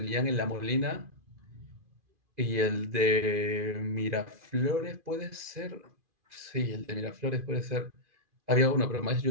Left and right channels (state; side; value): late; left; 2.4 ms